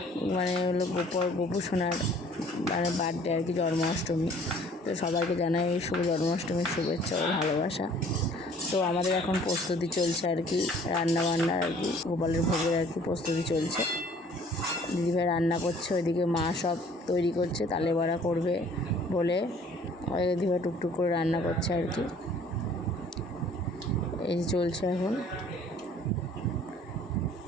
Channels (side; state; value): both; normal; correlation 0.54